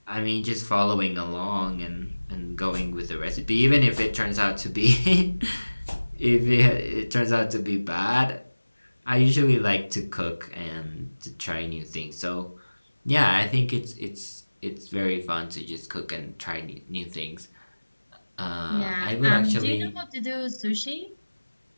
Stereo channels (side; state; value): both; inverted; correlation -1.00